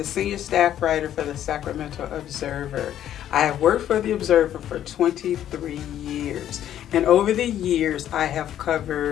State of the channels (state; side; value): quieter; right; 11.1 dB